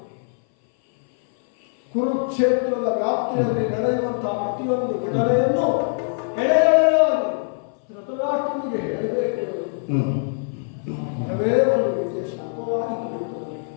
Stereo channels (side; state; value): right; silent; 58 dB below the other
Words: ಕುರುಕ್ಷೇತ್ರದ ವ್ಯಾಪ್ತಿಯಲ್ಲಿ ನಡೆಯುವಂತಹ ಪ್ರತಿಯೊಂದು ಘಟನೆಯನ್ನು ಎಳೆಯಾಗಿ ಧೃತರಾಷ್ಟ್ರನಿಗೆ ಹೇಳಬೇಕು. ಮರವೇ ಒಂದು ರೀತಿಯ ಶಾಪವಾಗಿ ಕುಳಿತುಕೊಳ್ಳಿ.